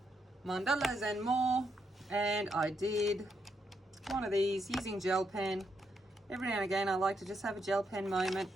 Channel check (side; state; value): both; normal; correlation 0.79